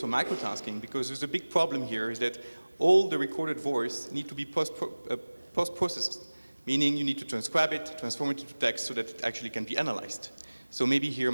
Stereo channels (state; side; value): inverted; both; correlation -1.00